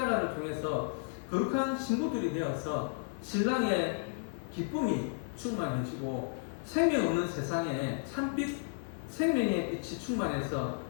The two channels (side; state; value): right; silent; 56 dB below the other